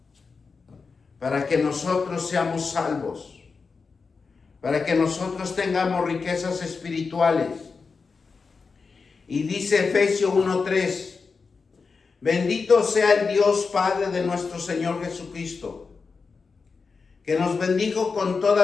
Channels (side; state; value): right; quieter; 4.8 dB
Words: para que nosotros seamos salvos, para que nosotros tengamos riquezas espirituales. Y dice Efesios 1:3, Bendito sea el Dios Padre de nuestro Señor Jesucristo, que nos bendijo con